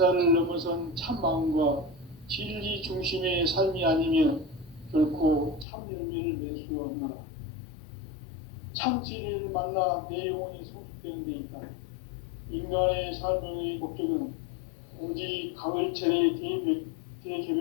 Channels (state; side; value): drops out; right; at 5.7 s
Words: 넘어선 참 마음과 진리 중심의 삶이 아니면 결코 참 열매를 맺을 수가 없노라. 참 진리를 만나 내 영혼이 성숙되는 데 있다. 인간의 삶의 목적은 오직 가을철의